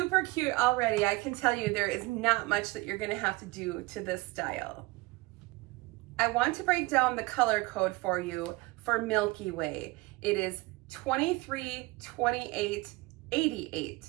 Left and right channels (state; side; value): quieter; left; 22.7 dB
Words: cute already. I can tell you there is not much that you're gonna have to do to this style. I want to break down the color code for you for Milky Way. It is